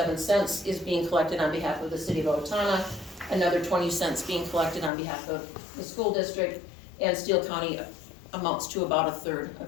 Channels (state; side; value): drops out; right; at 4.9 s